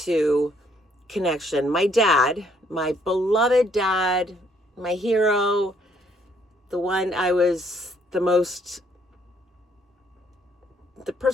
connection. My dad, my beloved dad, my hero, the one I was the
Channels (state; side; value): normal; both; correlation 0.67